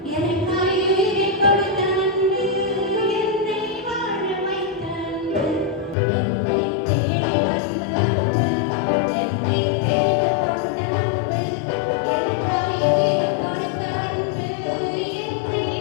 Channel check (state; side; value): drops out; right; at 6.0 s